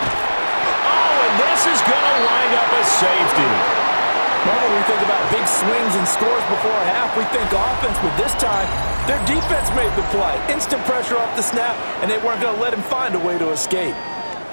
Oh, and this is going to wind up a safety. Normally we think about big swings and scores before a half. We think offense, but this time their defense made the play. Instant pressure off the snap, and they weren't going to let him find a way to escape.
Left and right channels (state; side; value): inverted; both; correlation -1.00